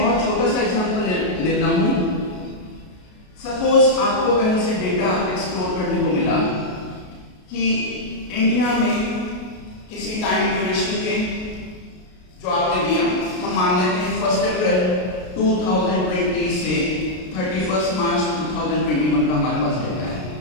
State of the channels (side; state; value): right; late; 33 ms